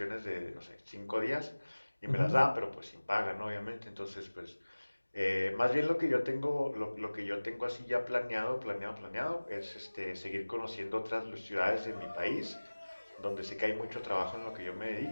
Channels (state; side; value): inverted; both; correlation -1.00